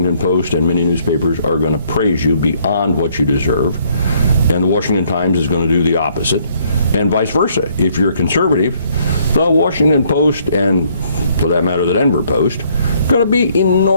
Post and many newspapers are going to praise you beyond what you deserve, and the Washington Times is going to do the opposite, and vice versa. If you're a conservative, the Washington Post and, for that matter, the Denver Post, are going to be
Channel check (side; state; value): both; inverted; correlation -0.66